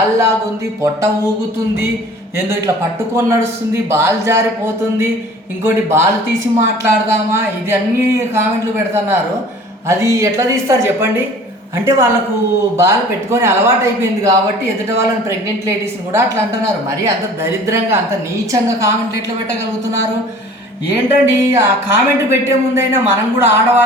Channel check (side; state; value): both; normal; correlation 0.47